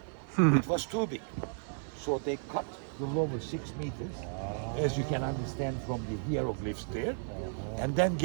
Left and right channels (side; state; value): left; silent; 55 dB below the other